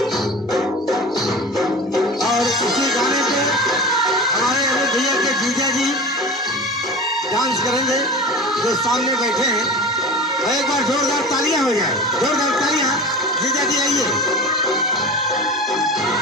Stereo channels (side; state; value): both; normal; correlation 0.33